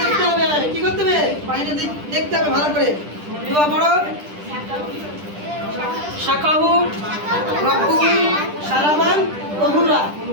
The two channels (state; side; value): late; left; 10 ms